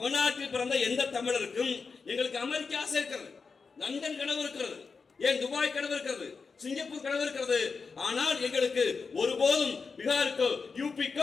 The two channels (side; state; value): right; quieter; 4.9 dB